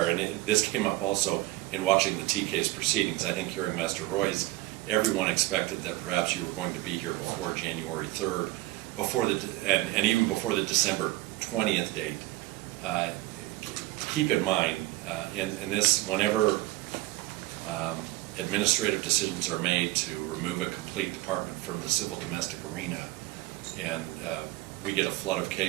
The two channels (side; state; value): left; quieter; 18.5 dB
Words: and this came up also in watching the T case proceedings. I think hearing Master Roy's, everyone expected that perhaps you were going to be here before January 3rd, and even before the December 20th date. Keep in mind, in this, whenever administrative decisions are made to remove a complete department from the civil domestic arena, and we get a flood of